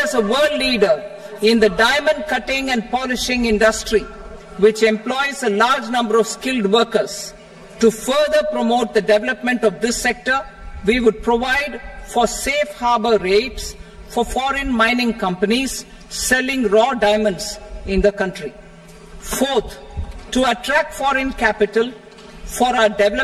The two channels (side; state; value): both; identical; correlation 1.00